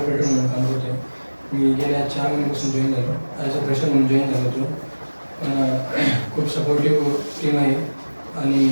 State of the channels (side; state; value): both; inverted; correlation -1.00